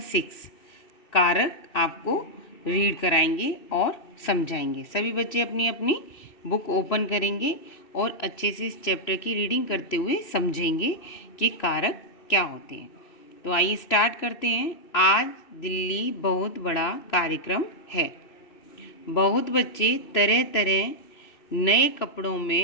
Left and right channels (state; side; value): late; right; 3.0 ms